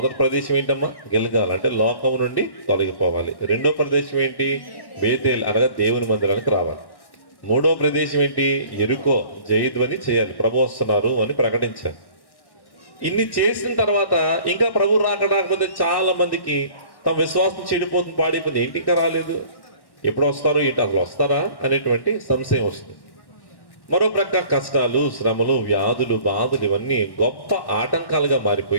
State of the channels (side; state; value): right; late; 1.1 ms